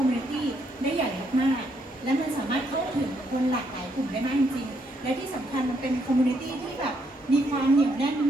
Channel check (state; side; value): normal; both; correlation 0.74